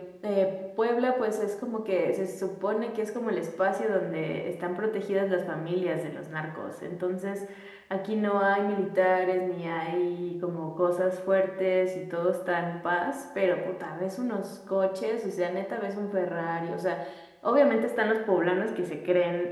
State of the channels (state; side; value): identical; both; correlation 1.00